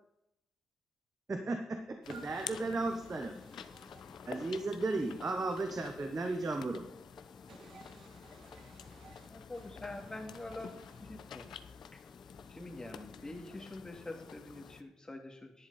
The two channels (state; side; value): normal; both; correlation 0.85